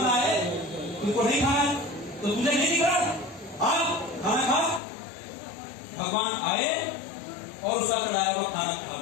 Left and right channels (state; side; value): drops out; right; at 4.8 s